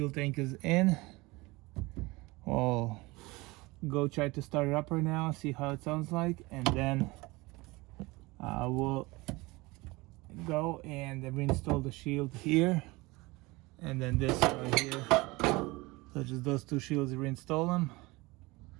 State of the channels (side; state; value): left; quieter; 22.7 dB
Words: tank is in. We'll go try to start it up right now, see how it sounds like, and then we'll go and reinstall the shield here, and then this right here. So just those 2 shields, reinstall them,